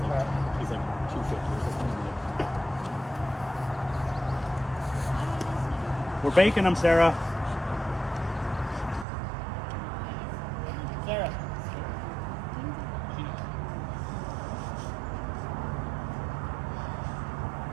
We're baking them, Sarah. Sarah.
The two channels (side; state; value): left; drops out; at 9.1 s